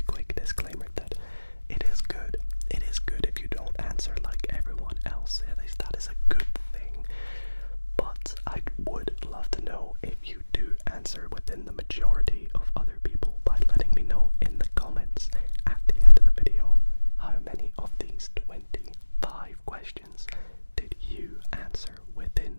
quick disclaimer that it is good if you don't answer like everyone else. At least that is a good thing. But I would love to know if you do answer within the majority of other people by letting me know in the comments at the end of the video how many of these 25 questions did you answer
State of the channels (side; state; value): both; inverted; correlation -1.00